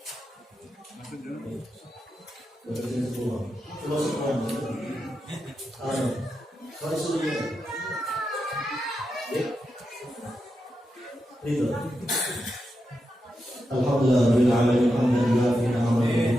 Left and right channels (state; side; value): normal; both; correlation 0.87